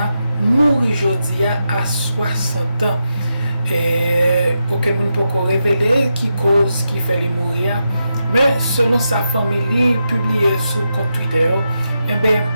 mourit aujourd'hui à 60 ans. Et aucun monde peut révéler qui cause qui fait les mourir, mais selon sa famille publié sur compte Twitter, il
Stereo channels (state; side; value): inverted; both; correlation -0.87